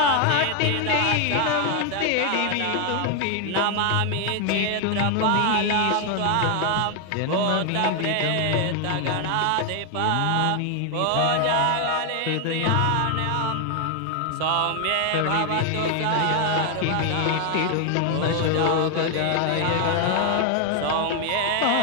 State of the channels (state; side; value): different; both; correlation 0.01